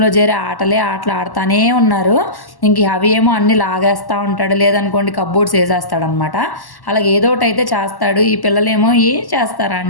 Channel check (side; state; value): right; late; 1.1 ms